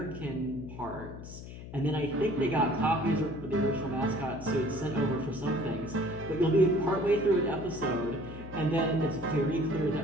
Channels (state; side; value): noise; left; hum, 12 dB below the sound